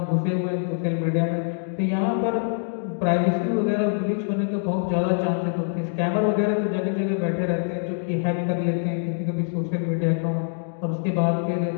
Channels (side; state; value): right; silent; digital silence